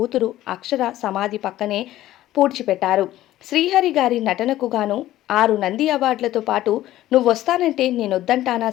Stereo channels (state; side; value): quieter; right; 14.5 dB